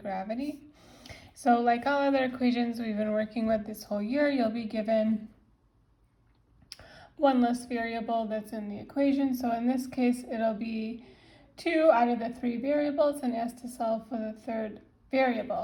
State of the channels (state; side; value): identical; both; correlation 1.00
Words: So like all other equations we've been working with this whole year, you'll be given one less variable that's in the equation. So in this case, it'll be 2 out of the 3 variables and asked to solve for the third